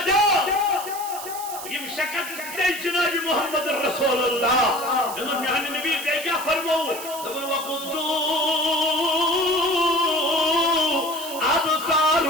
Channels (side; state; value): right; noise; hiss, 11 dB below the sound